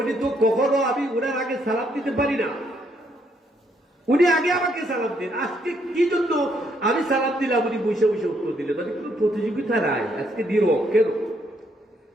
তো কখনো আমি ওনার আগে সালাম দিতে পারি না, উনি আগে আমাকে সালাম দিন। আজকে কি জন্য আমি সালাম দিলাম, উনি বসে বসে উত্তর দিলেন? মানে কোনো প্রতিযোগিতা নাই, আজকে দিল কেন?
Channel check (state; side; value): normal; both; correlation 0.72